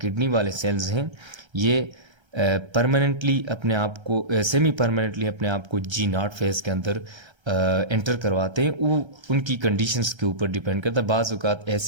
किडनी वाले सेल्स हैं ये परमानेंटली अपने आप को सेमी परमानेंटली अपने आप को G0 फेज के अंदर एंटर करवाते हैं। वो उनकी कंडीशंस के ऊपर डिपेंड करता है। बाज़ औक़ात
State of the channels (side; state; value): left; late; 1.3 ms